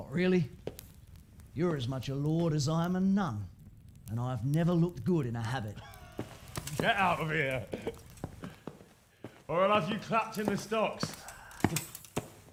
really. You're as much a lord as I am a nun. And I've never looked good in a habit. Get out of here! Or I'll have you clapped in the stocks.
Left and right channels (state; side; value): identical; both; correlation 1.00